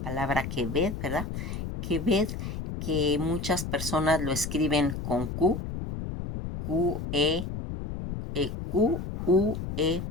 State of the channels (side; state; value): left; noise; rumble, 6 dB below the sound